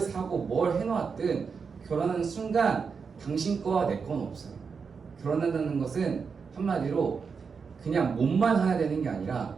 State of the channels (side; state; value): left; quieter; 5.6 dB